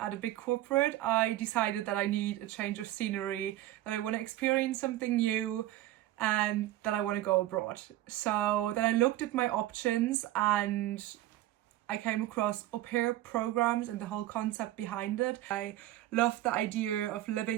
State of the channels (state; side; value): quieter; left; 14.8 dB